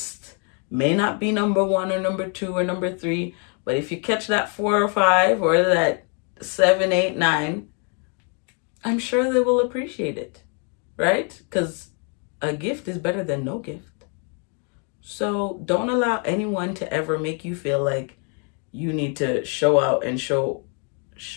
may not be number 1 or number 2 or number 3, but if you catch that 4 or 5 or that 7, 8, 9, I'm sure they will appreciate it, right? Because a gift is better than no gift. So don't allow anyone to ever make you feel like you need to show out and show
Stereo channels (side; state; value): right; quieter; 38.6 dB